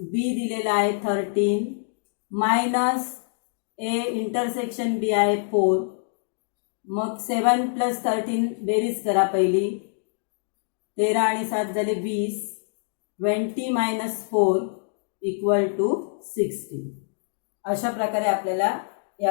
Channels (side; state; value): right; silent; digital silence